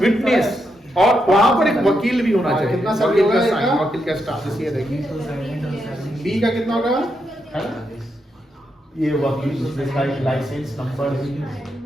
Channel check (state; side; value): normal; both; correlation 0.82